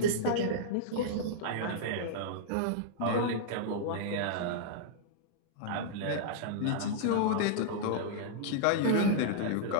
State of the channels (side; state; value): both; different; correlation -0.02